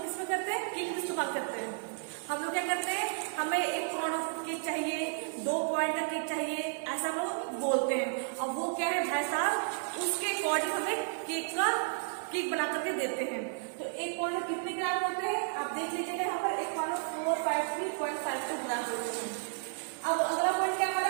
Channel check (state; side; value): silent; left; 56 dB below the other